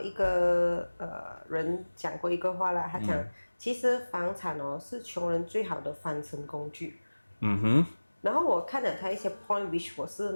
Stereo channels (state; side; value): inverted; both; correlation -1.00